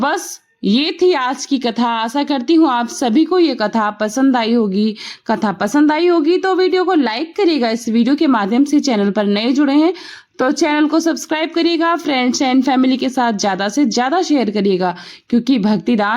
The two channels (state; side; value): identical; both; correlation 1.00